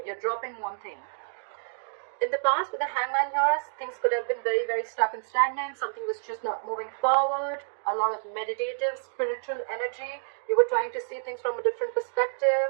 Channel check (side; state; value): left; silent; digital silence